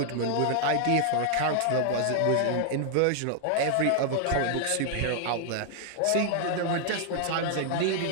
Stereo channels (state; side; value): different; both; correlation 0.00